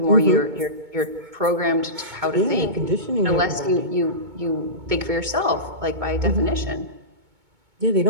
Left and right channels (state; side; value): late; left; 2.2 ms